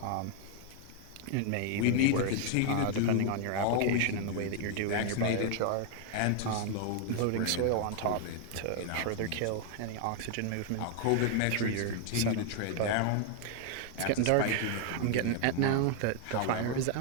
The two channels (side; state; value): both; different; correlation 0.00